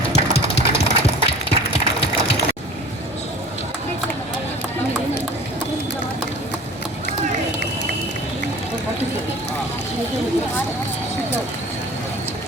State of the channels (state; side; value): normal; both; correlation 0.43